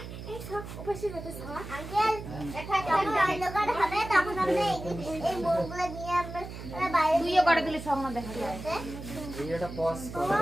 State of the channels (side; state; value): right; noise; hum, 10 dB below the sound